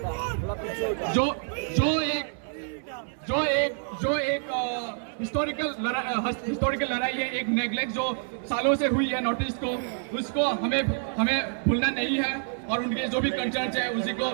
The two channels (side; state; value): left; silent; 55 dB below the other